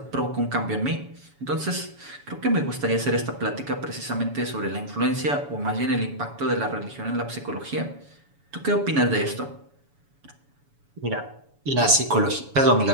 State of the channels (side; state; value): left; late; 7.1 ms